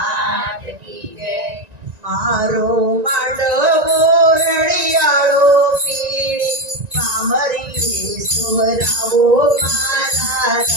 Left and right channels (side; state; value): left; late; 1.9 ms